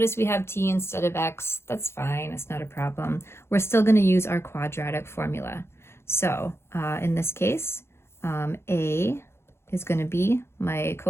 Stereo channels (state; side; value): late; right; 0.12 ms